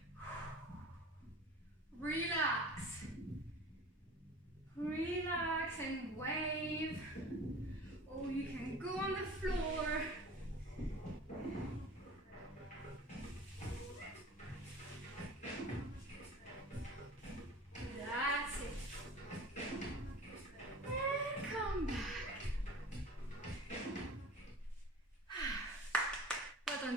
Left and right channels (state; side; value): normal; both; correlation 0.41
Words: Relax. Relax and wave. Or you can go on the floor. That's it. And come back. Well done,